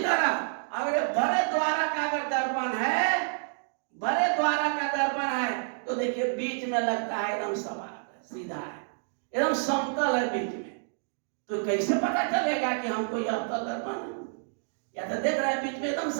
तरह अगर बड़े द्वारा का अगर दर्पण है, बड़े द्वारा का दर्पण है तो देखिए बीच में लगता है एकदम सपाट सीधा है, एकदम समतल है बीच में, तो कैसे पता चलेगा कि हमको यह अवतल दर्पण है? या तो देख रहे हैं बीच में एकदम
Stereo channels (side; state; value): left; silent; digital silence